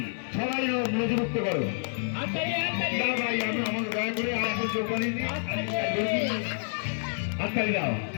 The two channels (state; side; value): silent; right; digital silence